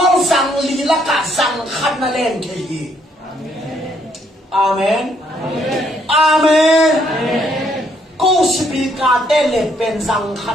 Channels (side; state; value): both; normal; correlation 0.70